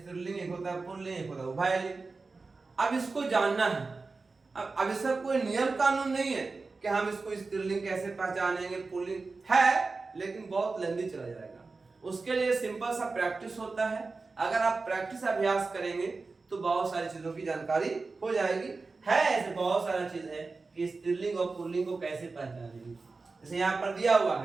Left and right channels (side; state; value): left; quieter; 4.0 dB